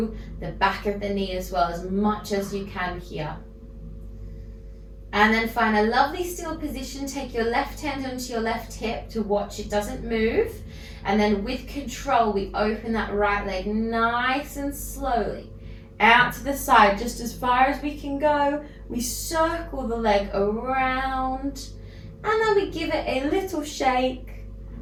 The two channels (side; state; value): both; identical; correlation 1.00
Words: the back of the knee as well, as much as you can here. And then find a lovely still position. Take your left hand onto your left hip to watch it doesn't move. And then with control, we open that right leg nice and slowly out to the side, just as far as we can go. We circle the leg around, and then we give it a little shake.